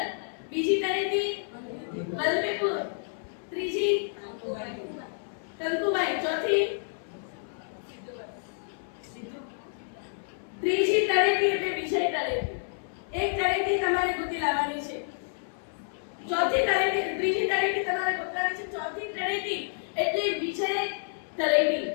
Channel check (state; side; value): silent; right; 58 dB below the other